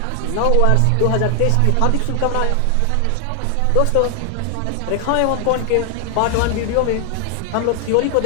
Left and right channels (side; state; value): both; different; correlation 0.00